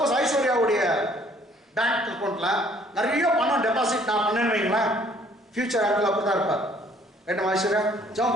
ஐஸ்வர்யாவுடைய பேங்க் அக்கௌண்ட்ல நிறைய பணம் டெபாசிட் நான் பண்ணேன்னு வைங்களேன், ஃபியூச்சர் ஆங்கிள் அப்படிதான் இருப்பார். ரைட்டா ஐஸ்வர்யா? ஜாம்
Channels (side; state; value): both; normal; correlation 0.60